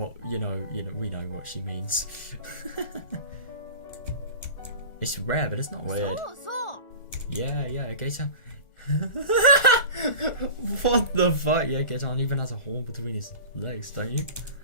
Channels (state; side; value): late; right; 1.4 ms